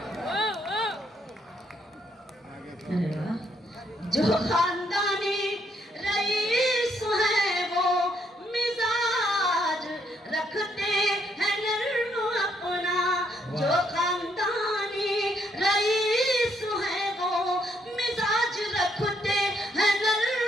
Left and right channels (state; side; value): normal; both; correlation 0.73